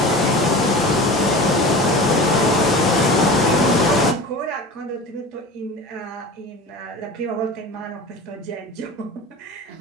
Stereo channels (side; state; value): both; normal; correlation 0.34